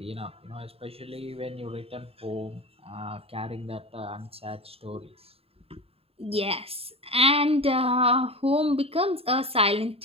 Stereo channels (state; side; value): late; left; 0.28 ms